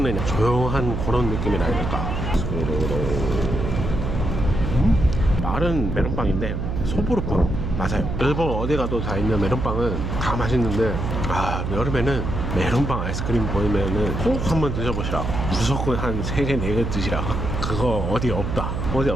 조용한 그런 느낌이라 해야 될까. 마른 메론빵인데 소보루빵 맞아요. 일본 어디 가도 다 있는 메론빵은 다 맛있는데 아, 여름에는 메론빵 아이스크림 보이면은 꼭 한번 드셔보시라. 무조건 한 3개 4개 드시라. 그거 어디 없다. 어디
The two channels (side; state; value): right; noise; hum, 3 dB below the sound